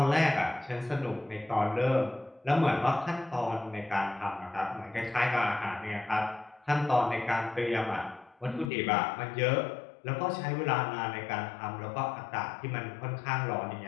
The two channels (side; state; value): right; drops out; at 8.7 s